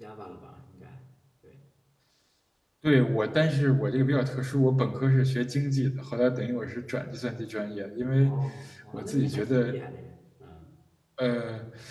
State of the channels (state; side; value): identical; both; correlation 1.00